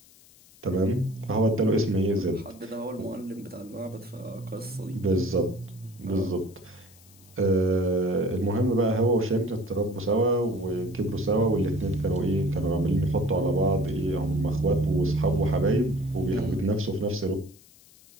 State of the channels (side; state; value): left; noise; hiss, 26 dB below the sound